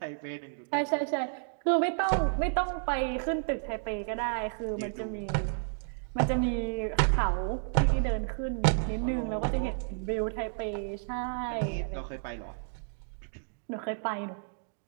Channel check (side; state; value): left; silent; digital silence